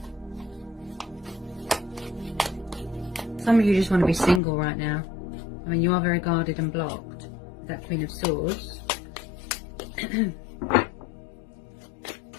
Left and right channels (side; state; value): right; drops out; at 4.4 s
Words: Some of you just want to be single right now. I mean, you are very guarded and blocked. That Queen of Swords.